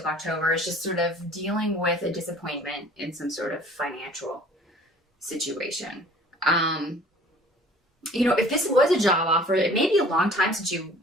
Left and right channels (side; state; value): both; normal; correlation 0.50